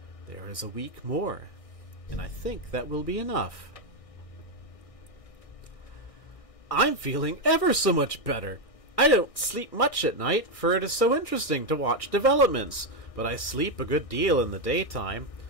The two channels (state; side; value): late; right; 1.6 ms